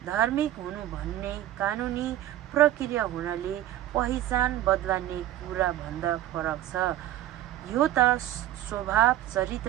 धार्मिक हुनु भन्ने कानुनी प्रक्रिया हुनाले पहिचान बदल्ने कुरा भन्दा फरक छ। यो त स्वभाव,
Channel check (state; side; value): quieter; left; 13.3 dB